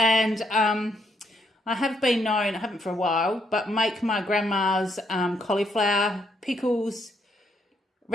I have been known, I haven't for a while, but make my grandma's cauliflower pickles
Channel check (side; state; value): both; normal; correlation 0.74